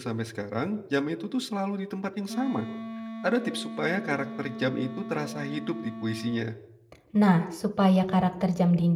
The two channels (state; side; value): identical; both; correlation 1.00